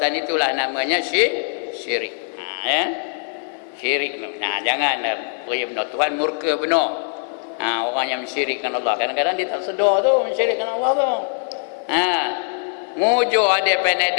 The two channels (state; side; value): silent; right; digital silence